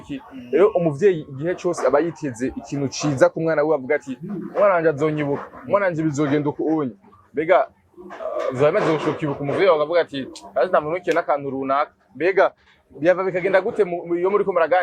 rero umuvyeyi igihe cyose aba yiteze ikintu ciza ku mwana we avuga ati umwana wanje azonyibuka umwana wanje bizogenda uko unye mbega vyamaze gushokibuka umuvyeyi akavuga ati azi ndamunukiye n'akantu runaka mbega byava bikagenda gute iyo muri ko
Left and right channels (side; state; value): both; identical; correlation 1.00